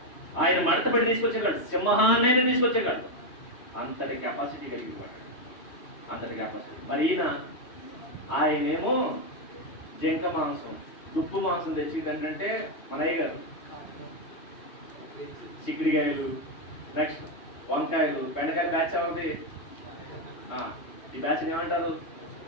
ఆయన మడతపడి తీసుకొచ్చేవాడు, సింహాన్నైనా తీసుకొచ్చేవాడు. అంతటి కెపాసిటీ కలిగి ఉన్నాడు, అంతటి కెపాసిటీ. మరి ఆయనేమో జింక మాంసం, దుప్పు మాంసం తెచ్చి ఏంటంటే మన అయ్య గారు చిక్కుడికాయలు, నెక్స్ట్ వంకాయలు, బెండకాయలు బ్యాచ్ అవుతుంది. ఈ బ్యాచ్ ఏమంటారు?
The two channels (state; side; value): late; right; 3.1 ms